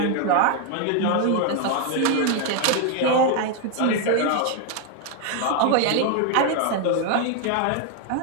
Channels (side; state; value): both; different; correlation 0.01